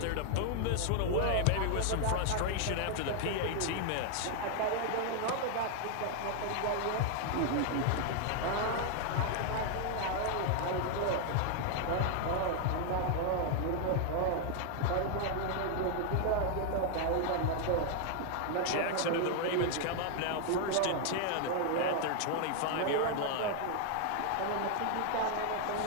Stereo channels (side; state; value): both; different; correlation 0.00